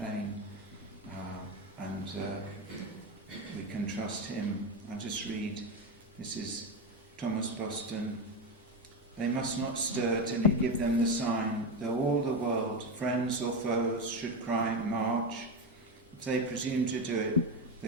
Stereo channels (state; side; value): normal; both; correlation 0.14